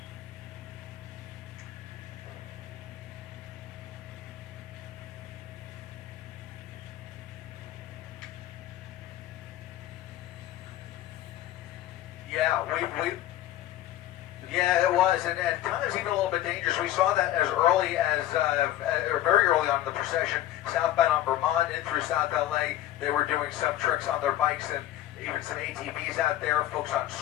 Yeah, it was, and times even a little bit dangerous. We saw that as early as, or very early on in the procession, southbound on Vermont in through South LA. They were doing some tricks on their bikes and even some ATVs out there, folks on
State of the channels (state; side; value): quieter; right; 13.6 dB